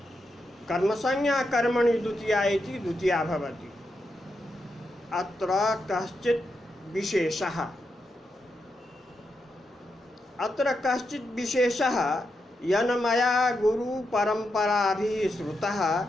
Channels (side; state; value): both; normal; correlation 0.85